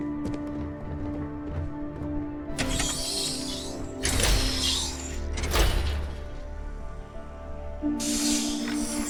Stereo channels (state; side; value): identical; both; correlation 1.00